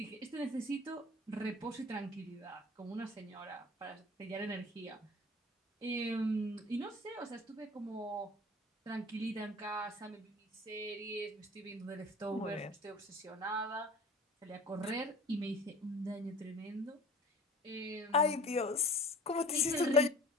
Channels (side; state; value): both; normal; correlation 0.43